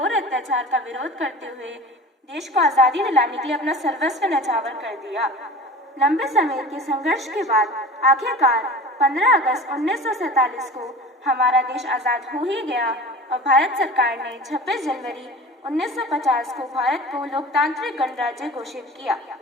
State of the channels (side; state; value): both; normal; correlation 0.36